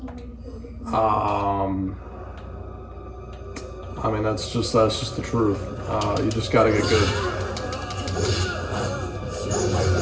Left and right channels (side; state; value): both; identical; correlation 1.00